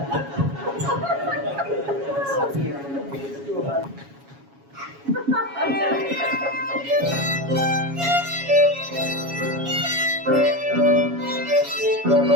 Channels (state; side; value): late; left; 7.2 ms